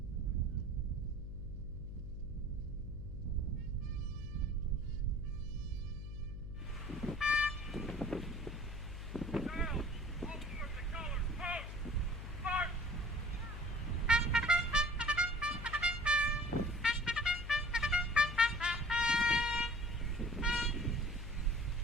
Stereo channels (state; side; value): noise; left; hum, 7 dB below the sound